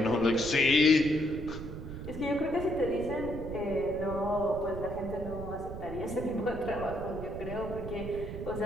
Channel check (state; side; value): noise; right; rumble, 9 dB below the sound